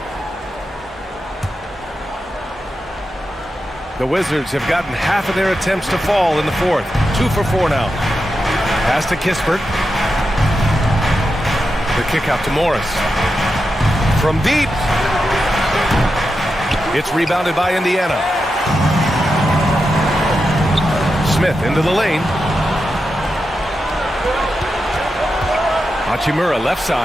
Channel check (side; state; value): both; normal; correlation 0.88